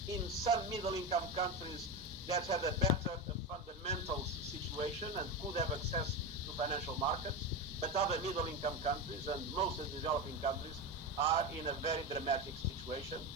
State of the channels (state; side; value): normal; both; correlation 0.18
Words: in some middle-income countries that had a better fundamentals situation and could have access to financial markets, but other middle-income countries and most of the developing countries are in a very dramatic situation